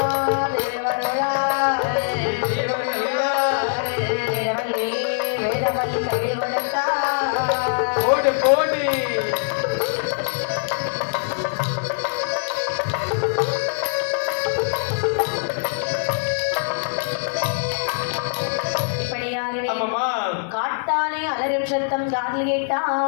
கொடுத்தார் போடு போடு இப்படியாகவே ஆமாமா காட்டானே அலறும் சத்தம் காதில் கேட்டான்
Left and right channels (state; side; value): silent; right; digital silence